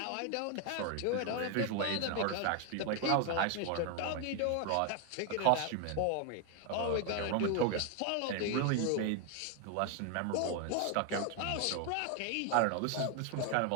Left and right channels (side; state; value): both; different; correlation 0.01